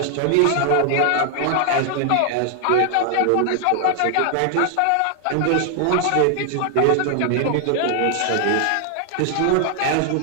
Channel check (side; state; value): both; different; correlation 0.00